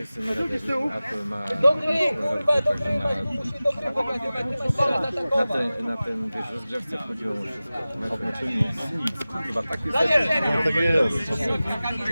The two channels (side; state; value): both; inverted; correlation -0.97